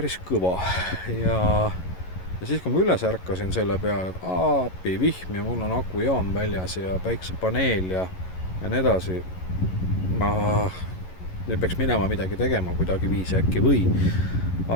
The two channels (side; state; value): right; late; 11 ms